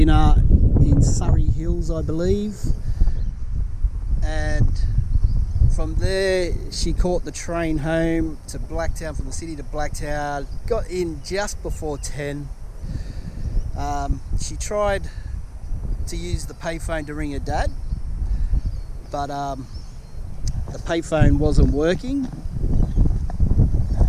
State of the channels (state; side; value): identical; both; correlation 1.00